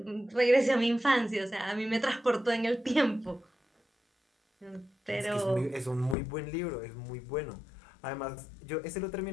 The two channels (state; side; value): drops out; right; at 6.2 s